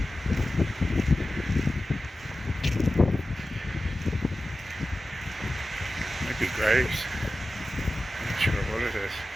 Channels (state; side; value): normal; both; correlation 0.94